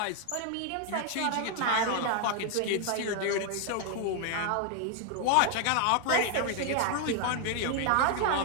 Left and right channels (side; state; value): both; different; correlation 0.00